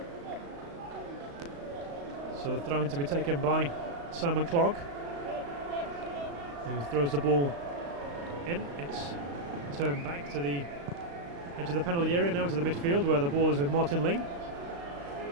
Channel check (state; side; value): late; left; 35 ms